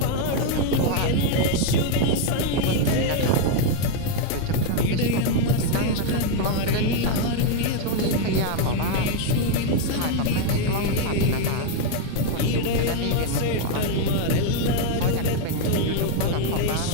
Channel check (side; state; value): both; different; correlation 0.01